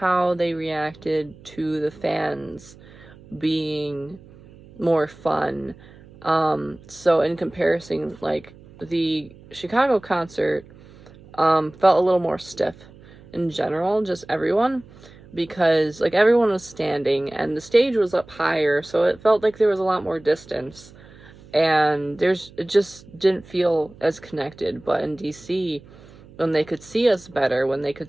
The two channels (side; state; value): right; noise; hum, 22 dB below the sound